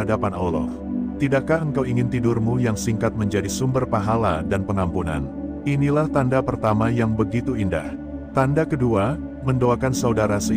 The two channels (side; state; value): both; identical; correlation 1.00